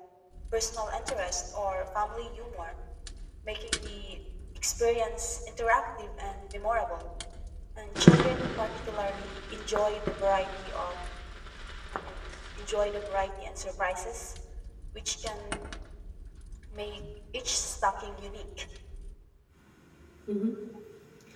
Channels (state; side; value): identical; both; correlation 1.00